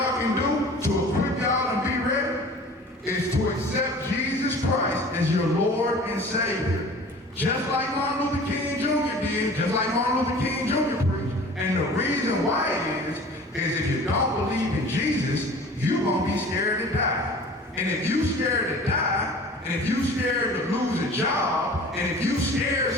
can do to equip y'all and be ready is to accept Jesus Christ as your Lord and Savior. Just like Martin Luther King Jr. did, just like Martin Luther King Jr. preached. And the reason why is if you don't believe in Jesus, you're gonna be scared to die. And if you scared to die, and if you scared to lose a job, and if you scared,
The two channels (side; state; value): both; normal; correlation 0.43